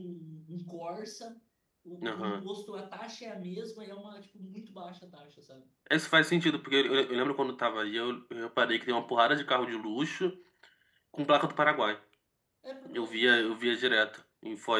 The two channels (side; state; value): both; identical; correlation 1.00